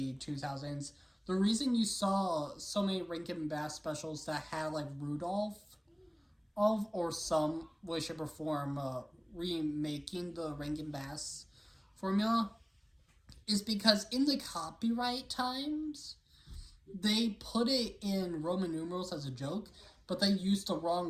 2000s, the reason you saw so many Rankin Bass specials that had, like, Rudolph or some way, shape, or form, remaking the Rankin Bass formula, is because in the copyright times, they put it in Roman numerals as a joke, but they used the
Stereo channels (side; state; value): both; identical; correlation 1.00